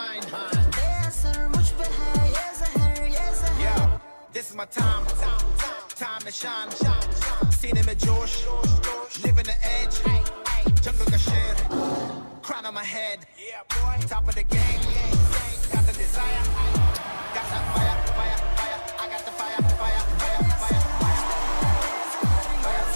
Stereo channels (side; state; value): both; inverted; correlation -1.00